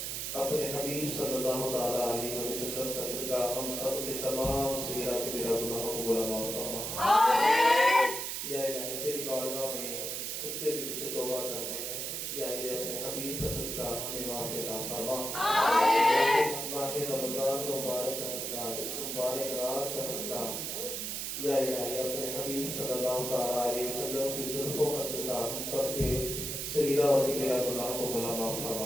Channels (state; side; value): noise; right; hiss, 3 dB below the sound